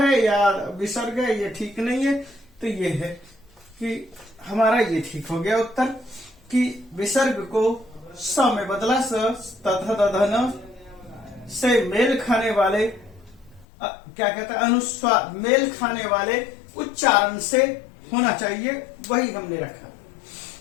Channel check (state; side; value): drops out; right; at 13.7 s